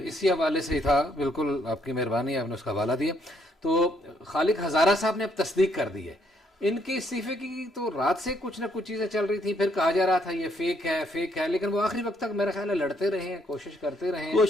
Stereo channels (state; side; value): normal; both; correlation 0.71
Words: اسی حوالے سے ہی تھا. بالکل آپ کی مہربانی، آپ نے اس کا حوالہ دیا. تو خالق ہزارہ صاحب نے اب تصدیق کر دی ہے ان کے استعفے کی. تو رات سے کچھ نہ کچھ چیزیں چل رہی تھیں، پھر کہا جا رہا تھا یہ فیک ہے، لیکن وہ آخری وقت تک میرا خیال ہے لڑتے رہے ہیں، کوشش کرتے رہے ہیں.